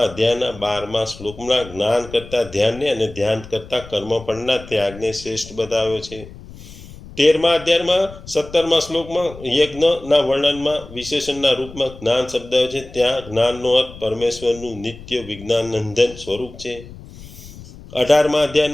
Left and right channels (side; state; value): left; noise; rumble, 17 dB below the sound